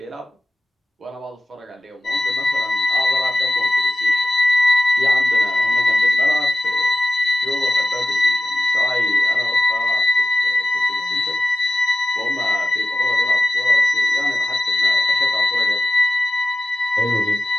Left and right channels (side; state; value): both; normal; correlation 0.94